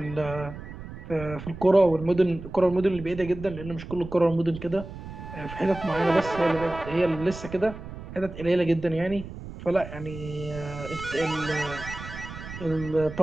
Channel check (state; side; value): noise; right; rumble, 12 dB below the sound